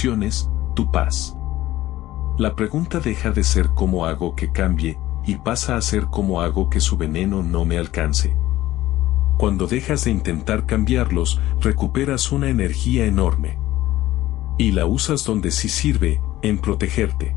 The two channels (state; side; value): quieter; right; 15.6 dB